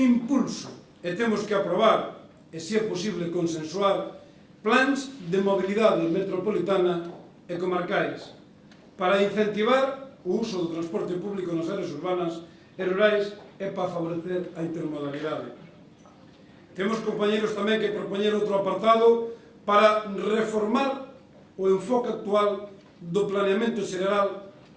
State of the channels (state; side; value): identical; both; correlation 1.00